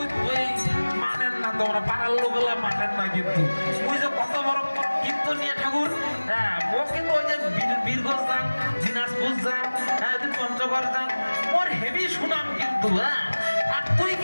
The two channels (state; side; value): inverted; both; correlation -1.00